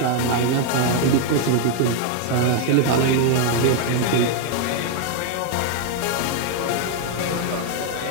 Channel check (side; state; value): both; different; correlation 0.00